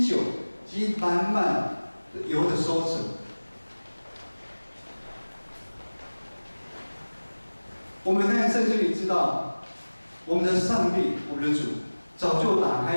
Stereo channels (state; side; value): inverted; both; correlation -1.00